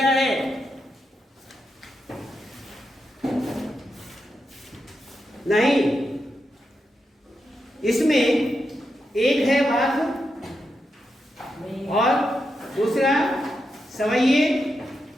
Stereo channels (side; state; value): both; normal; correlation 0.86